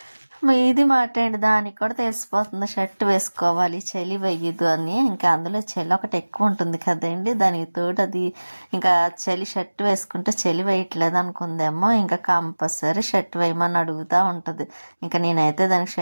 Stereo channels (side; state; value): both; inverted; correlation -1.00